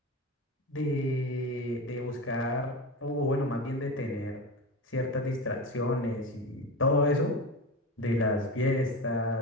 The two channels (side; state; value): both; normal; correlation 0.24